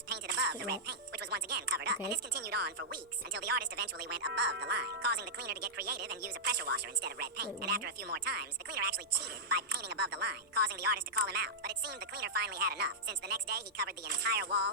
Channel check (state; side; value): normal; both; correlation -0.12